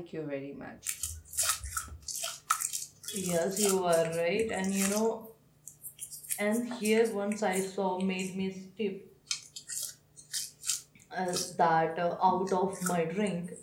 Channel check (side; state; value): both; identical; correlation 1.00